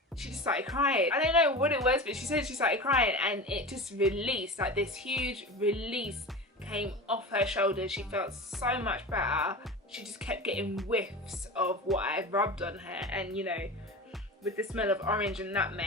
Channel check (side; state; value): both; normal; correlation 0.30